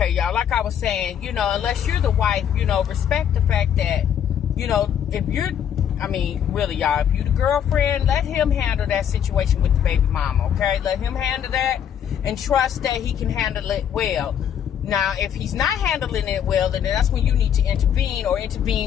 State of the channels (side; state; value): right; quieter; 9.0 dB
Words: y'all, like I was saying, unless you're the wife, respect the fact that, if you're, really, y'all, if you the girlfriend, let him handle that situation with the baby mama, okay? Let him handle that and trust that he can handle it well. Now, if he's not handling it well, then that's when you need to intervene or